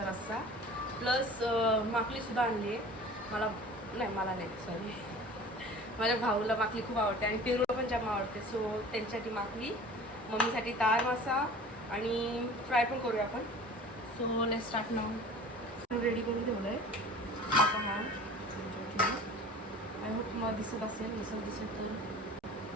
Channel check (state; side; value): normal; both; correlation 0.42